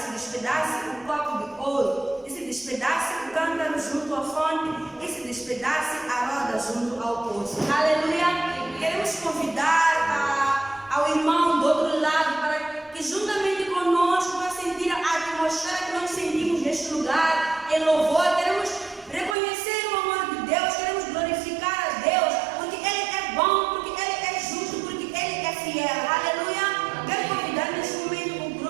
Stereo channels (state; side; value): drops out; left; at 19.4 s